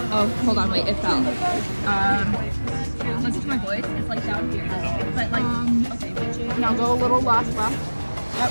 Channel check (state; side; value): inverted; both; correlation -1.00